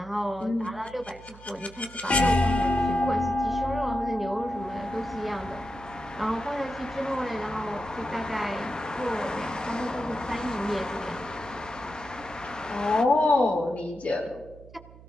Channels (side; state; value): right; noise; hum, 19 dB below the sound